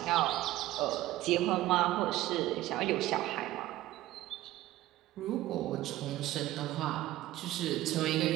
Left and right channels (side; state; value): left; quieter; 15.9 dB